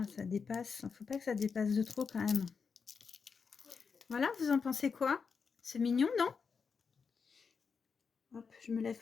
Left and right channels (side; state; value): right; quieter; 5.6 dB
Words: ça dépasse. Il ne faut pas que ça dépasse de trop quand même. Voilà, vous en pensez quoi? C'est mignon, non? Hop, je me lève